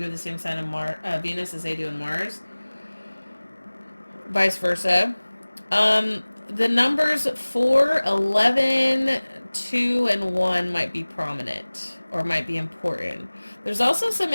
have the same sign in Venus as they do in Mars. Vice versa. The numbers 4, 11, 2, and 1 might be prominent or might be important. There's also some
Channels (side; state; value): both; inverted; correlation -1.00